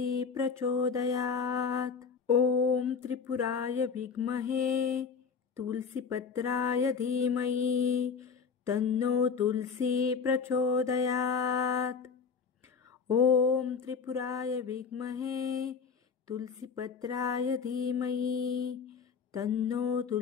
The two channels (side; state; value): right; quieter; 5.8 dB